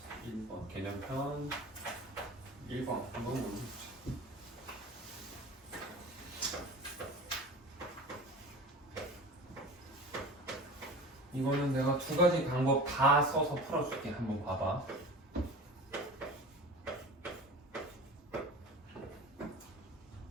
개념편 1번 한번 보여주죠. 이거는 내가 두 가지 방법 다 써서 풀어줄게. 한번 봐봐.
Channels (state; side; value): normal; both; correlation 0.36